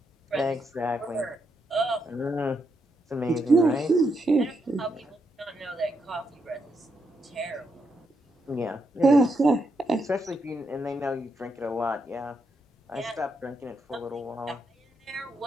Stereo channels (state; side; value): normal; both; correlation 0.81